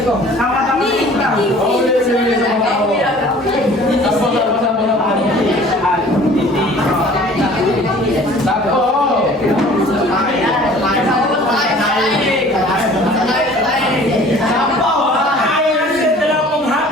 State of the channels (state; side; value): normal; both; correlation 0.49